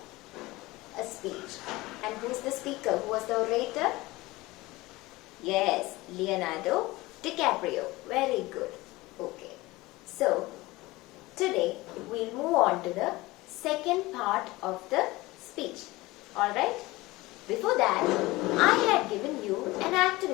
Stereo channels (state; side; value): quieter; right; 20.3 dB